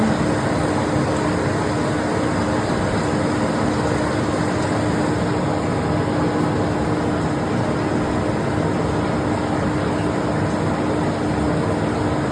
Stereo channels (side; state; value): both; identical; correlation 1.00